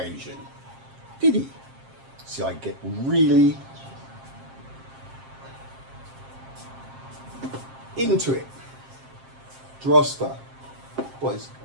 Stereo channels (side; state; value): left; late; 7.5 ms